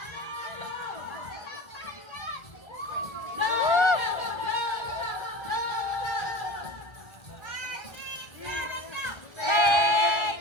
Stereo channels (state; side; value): late; right; 1.3 ms